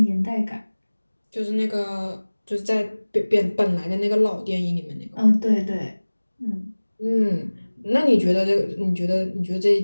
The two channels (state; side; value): inverted; both; correlation -1.00